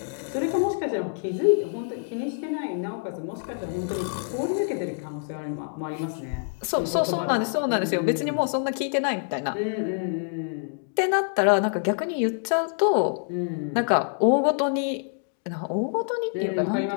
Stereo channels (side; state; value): right; silent; digital silence